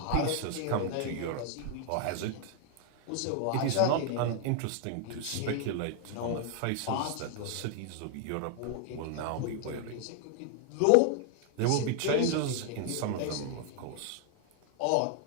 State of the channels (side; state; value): both; different; correlation 0.00